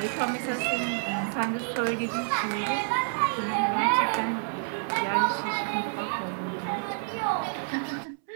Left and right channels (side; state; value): left; silent; 59 dB below the other